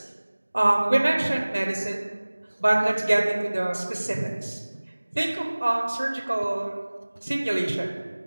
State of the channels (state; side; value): inverted; both; correlation -1.00